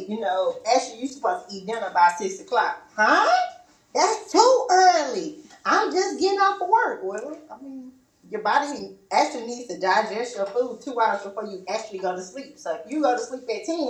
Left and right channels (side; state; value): both; identical; correlation 1.00